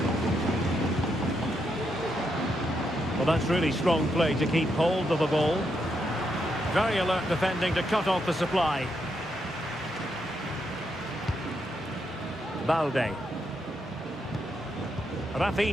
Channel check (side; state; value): both; normal; correlation 0.80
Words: Well, that's really strong play to keep hold of the ball. Very alert defending to cut off the supply. Balde.